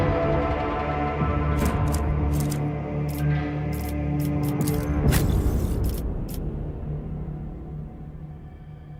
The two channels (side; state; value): both; identical; correlation 1.00